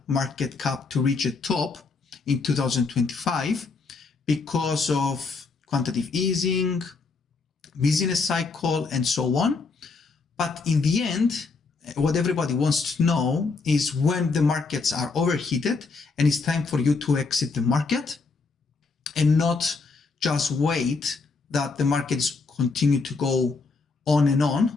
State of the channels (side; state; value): right; quieter; 4.3 dB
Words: market cap to reach a top in 2025 because of quantitative easing, business cycle, and so on. But in the end, what everybody wants to know is when the markets are overheated and it's time for you to exit the market and not just wait that the markets continue to go on